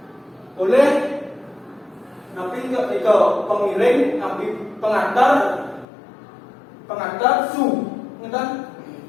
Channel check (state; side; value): drops out; right; at 5.9 s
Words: Oleh napi ke pengiring, napi pengantar su, ngeten?